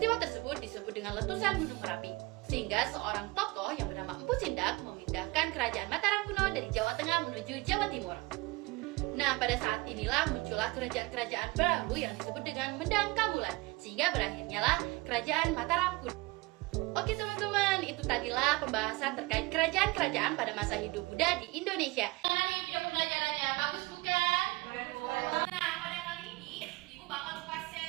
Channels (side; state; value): left; quieter; 23.7 dB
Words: tersebut disebut dengan letusan Gunung Merapi, sehingga seorang tokoh yang bernama Empu Sindak memindahkan kerajaan Mataram kuno dari Jawa Tengah menuju Jawa Timur. Nah, pada saat inilah muncullah kerajaan-kerajaan baru yang disebut dengan Mendang Kabulan, sehingga berakhirnya lah kerajaan Mataram kuno. Oke teman-teman, itu tadilah pembahasan terkait kerajaan-kerajaan pada masa hidup Buddha di Indonesia. Ini video pembelajarannya bagus bukan? Nah, pada kali ini Ibu bakal buka